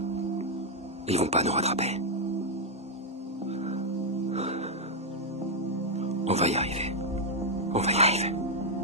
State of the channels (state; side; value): normal; both; correlation -0.02